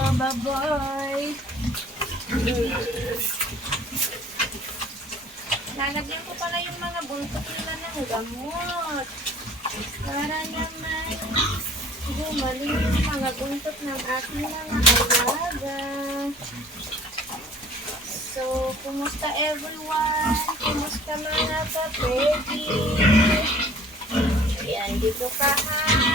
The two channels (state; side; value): normal; both; correlation 0.51